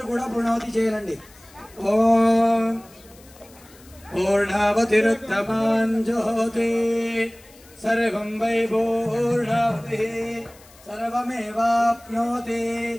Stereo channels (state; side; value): noise; left; hiss, 25 dB below the sound